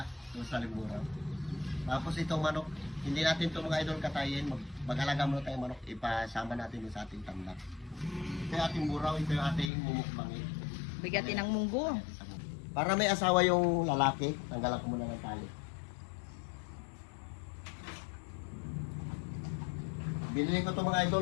doon sa liburan. Tapos itong manok, hindi natin ito mga idol katayin. Mag-alaga muna tayo manok. Ipasama natin sa ating tandak. Ito yung ating buraw, ito yung ating mumukbangin. Bigatin ng munggo. Para may asawa yung lalaki, tanggalan ko muna ng tali. Binili ko ito mga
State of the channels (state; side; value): drops out; right; at 9.7 s